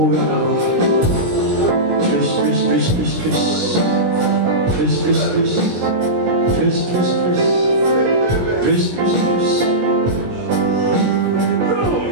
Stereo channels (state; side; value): late; left; 17 ms